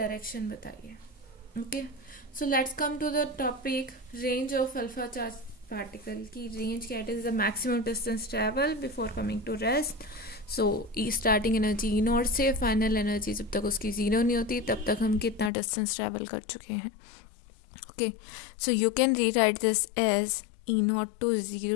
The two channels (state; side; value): drops out; right; at 15.5 s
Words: बताइए। Okay, so let's come to the topic range of alpha charge particle की रेंज क्या is the maximum distance travel before coming to rest. So starting energy e naught से final energy जब तक उसकी zero नहीं होती तब तक हम कितना डिस्टेंस ट्रैवल कर चुके हैं। Okay, so you can rewrite this as E nought to